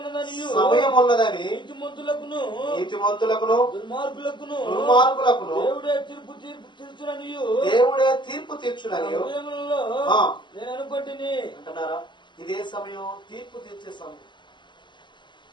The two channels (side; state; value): right; late; 0.22 ms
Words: ఉన్నదని నీతిమంతులకును దుర్మార్గులకును దేవుడే తీర్పు తీర్చునని నేను అనుకుంటుని అంటున్నారా? ఇదే సమయం తీర్పు తీర్చే సమయం.